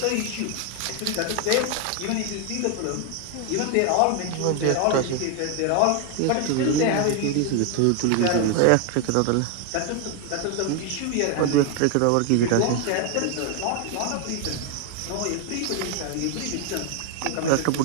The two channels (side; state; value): both; different; correlation 0.00